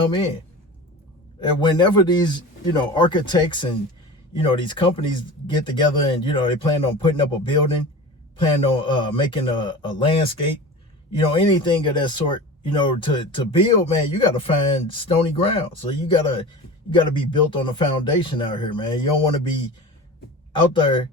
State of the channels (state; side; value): normal; both; correlation 0.33